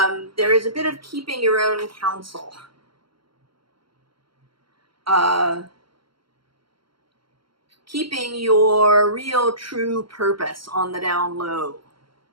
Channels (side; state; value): left; late; 0.73 ms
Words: there is a bit of keeping your own counsel. Keeping your real true purpose on the down low.